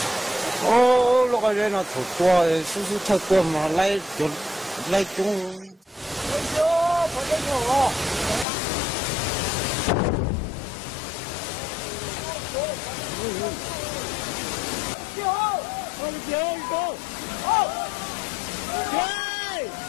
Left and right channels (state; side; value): drops out; right; at 8.5 s